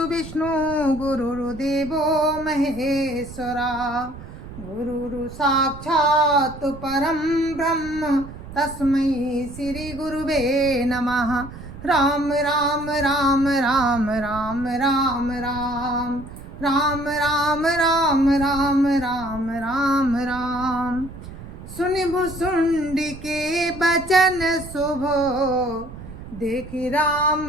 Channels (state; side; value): noise; right; rumble, 14 dB below the sound